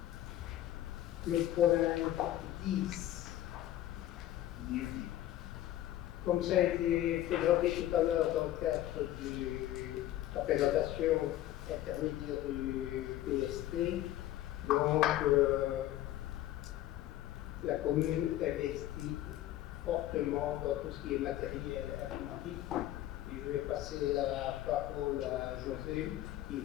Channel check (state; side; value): quieter; right; 13.7 dB